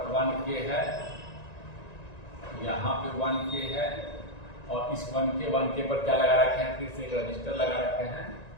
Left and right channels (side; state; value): right; late; 1.9 ms